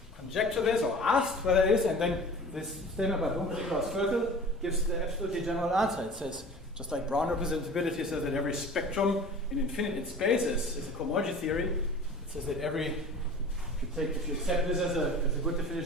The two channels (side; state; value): both; normal; correlation 0.41